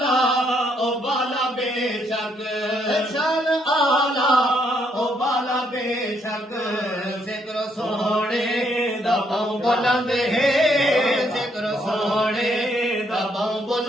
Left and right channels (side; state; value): both; normal; correlation 0.72